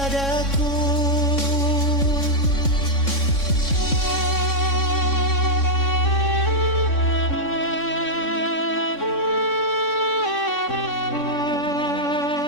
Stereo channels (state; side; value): late; right; 3.6 ms